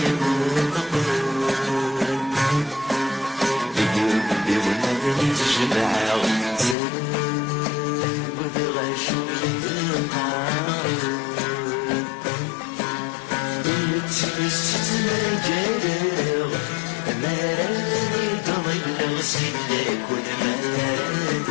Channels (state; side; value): drops out; right; at 6.8 s